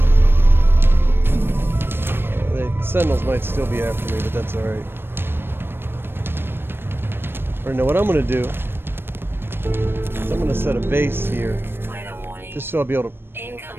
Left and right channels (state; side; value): late; left; 0.10 ms